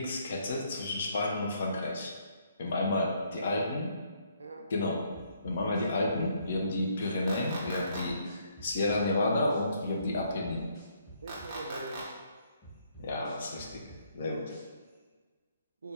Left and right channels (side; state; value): both; inverted; correlation -0.69